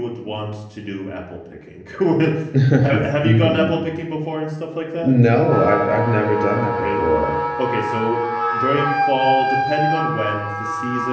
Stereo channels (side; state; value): both; identical; correlation 1.00